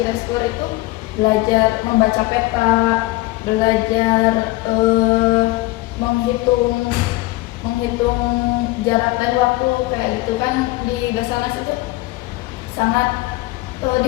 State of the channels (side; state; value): right; quieter; 19.8 dB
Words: Reskor itu belajar membaca peta, belajar menghitung jarak dan waktu kayak gitu kan di Basarnas itu sangat